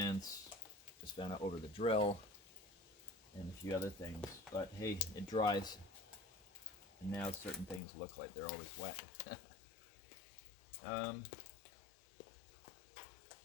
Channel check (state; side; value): drops out; right; at 7.8 s